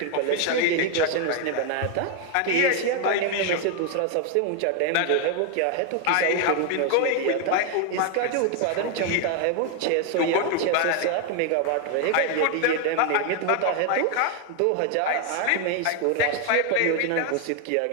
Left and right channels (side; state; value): both; different; correlation 0.00